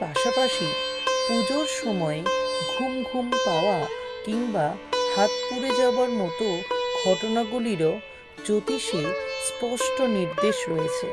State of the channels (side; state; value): both; identical; correlation 1.00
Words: পুজোর সময়ে ঘুম ঘুম পাওয়া কিংবা হাত পুড়ে যাওয়ার মতো ঘটনাগুলিরও জ্যোতিষে স্পষ্ট নির্দেশ রয়েছে,